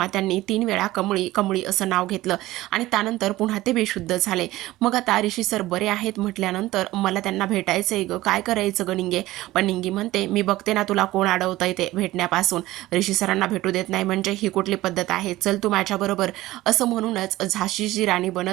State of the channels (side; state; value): left; quieter; 17.0 dB